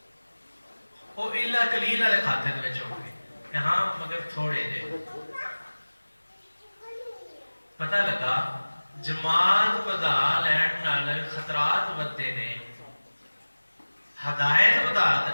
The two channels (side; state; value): both; inverted; correlation -1.00